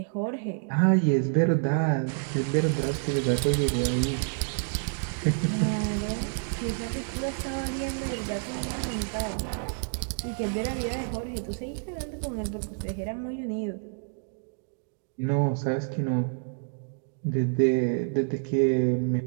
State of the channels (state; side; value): silent; left; 59 dB below the other